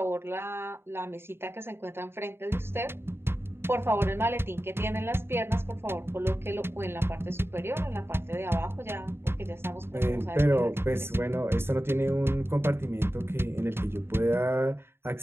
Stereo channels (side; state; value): left; late; 0.11 ms